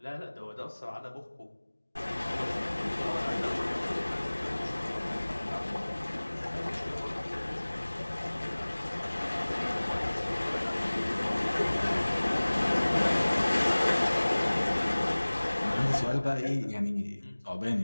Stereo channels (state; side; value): inverted; both; correlation -1.00